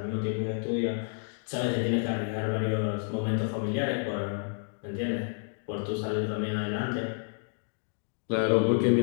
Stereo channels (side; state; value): right; silent; digital silence